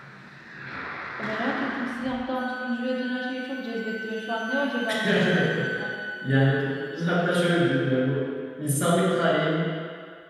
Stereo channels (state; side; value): identical; both; correlation 1.00